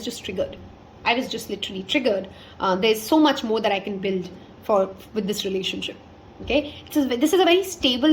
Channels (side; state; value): both; identical; correlation 1.00